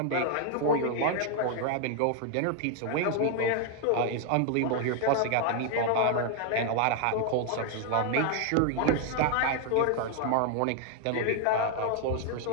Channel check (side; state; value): both; different; correlation 0.00